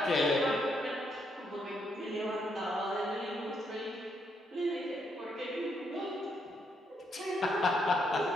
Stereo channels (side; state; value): both; normal; correlation 0.76